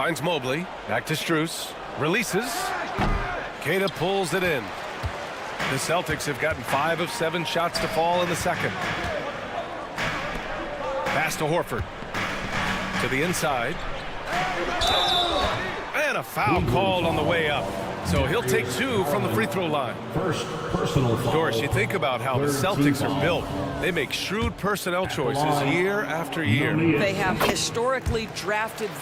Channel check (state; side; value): identical; both; correlation 1.00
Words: Mobley. Back to Strus. Releases. Queta pulls it in. The Celtics have gotten 5 of 7 shots to fall in the second. Pass to Horford. To the inside. And a foul called on the way up. So he'll take 2 from the free throw line. First personal foul. Doris, you think about how the Celtics are built. They make shrewd personnel choices year after year. They have historically drafted